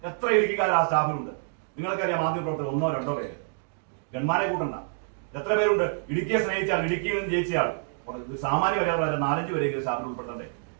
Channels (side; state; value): left; silent; digital silence